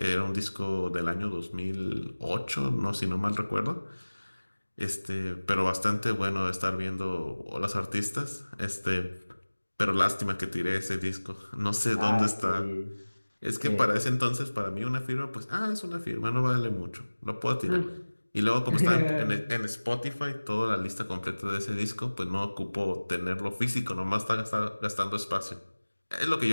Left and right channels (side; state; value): both; inverted; correlation -1.00